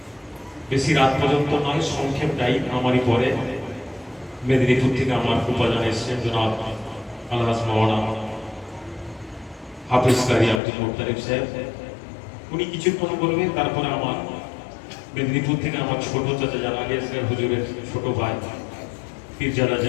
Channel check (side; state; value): right; drops out; at 10.6 s